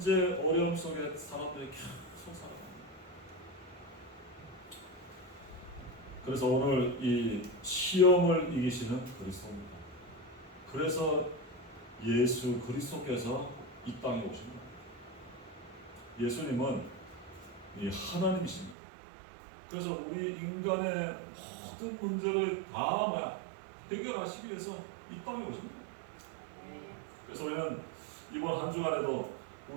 어려움 속에 사람들이 계속 살아갑니다. 그래서 오늘 이 시험을 이기시는 그리스도입니다. 그래서 예수 그리스도께서 이 땅에 오신 겁니다. 예수님은 이 하나님이십니다. 그래서 우리 인간의 모든 문제를 다 해결하시기 위해서 이 땅에 오십니다. 그래서 우리는 이번 한 주간에도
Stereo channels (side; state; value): left; drops out; at 18.8 s